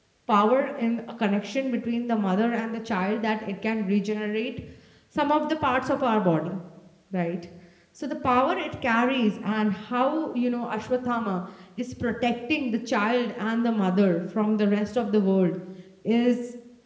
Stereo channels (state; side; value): identical; both; correlation 1.00